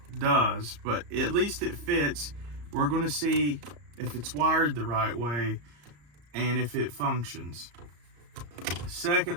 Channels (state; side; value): late; left; 34 ms